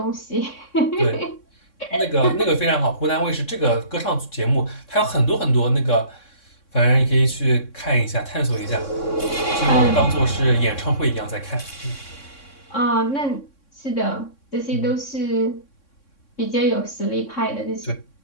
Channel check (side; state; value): right; late; 3.6 ms